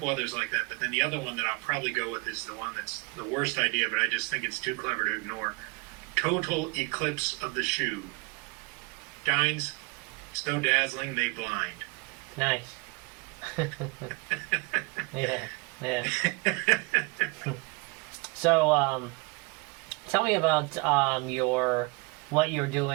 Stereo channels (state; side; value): quieter; left; 27.3 dB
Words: others like that. But then the other one that I'll probably go with is the one that's the worst idea, but I just think it's too clever to ignore. Total eclipse of the shoe. Shines so dazzling they blind. Nice. Yeah. So, tell me about what you're